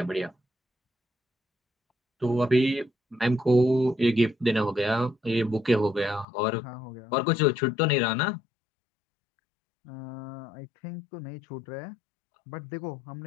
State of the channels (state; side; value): drops out; right; at 6.2 s